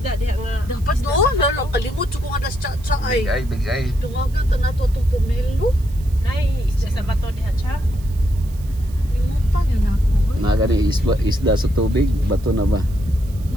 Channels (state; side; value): noise; right; hiss, 24 dB below the sound